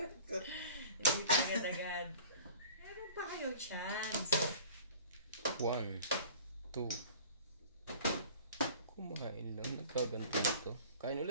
Hindi pa agad-agad. Meron pa kayong chance. 1, 2. Kumain lang. Nagkaganto ito. Kain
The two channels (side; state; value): both; inverted; correlation -0.44